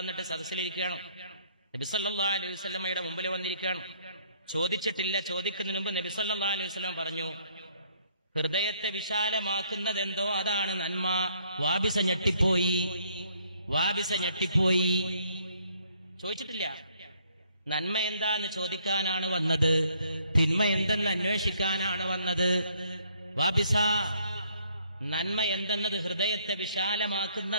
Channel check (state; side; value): inverted; both; correlation -0.65